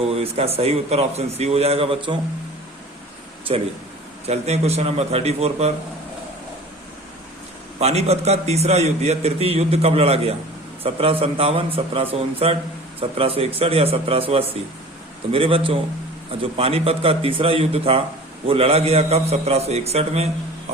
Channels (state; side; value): normal; both; correlation 0.42